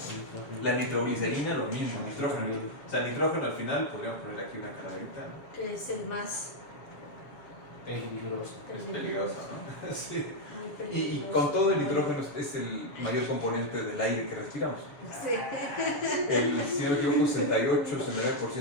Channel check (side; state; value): right; late; 7.1 ms